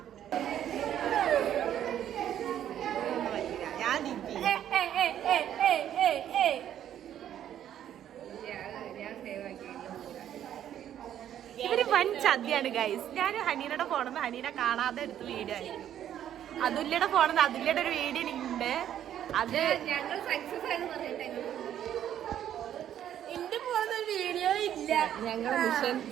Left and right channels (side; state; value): left; quieter; 10.6 dB